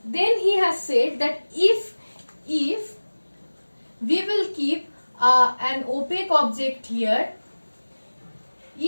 Then he has said that if we will keep an opaque object here,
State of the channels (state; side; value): inverted; both; correlation -1.00